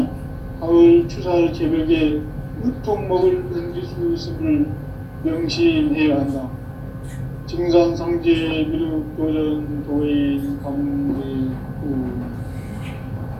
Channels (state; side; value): identical; both; correlation 1.00